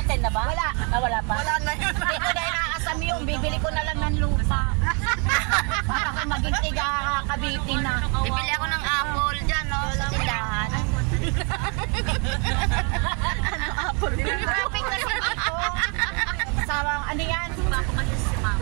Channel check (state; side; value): quieter; left; 35.2 dB